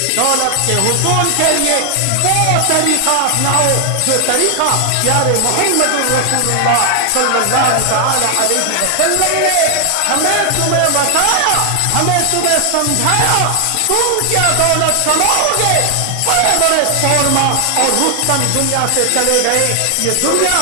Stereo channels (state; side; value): different; both; correlation 0.00